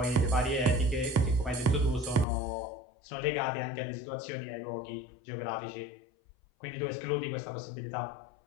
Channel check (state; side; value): drops out; right; at 2.2 s